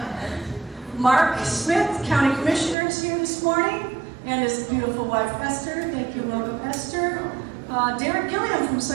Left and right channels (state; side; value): drops out; left; at 2.8 s